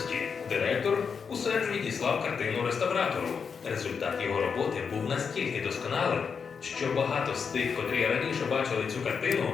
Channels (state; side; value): quieter; right; 6.0 dB